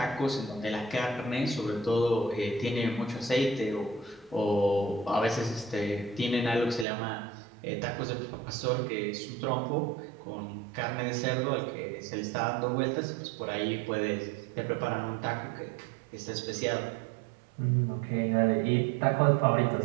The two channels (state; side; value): drops out; left; at 6.9 s